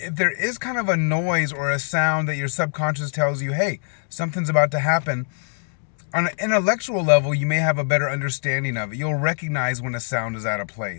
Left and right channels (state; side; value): silent; right; 63 dB below the other